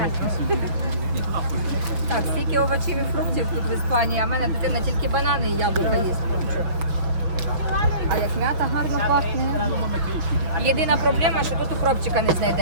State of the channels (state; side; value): late; left; 6.1 ms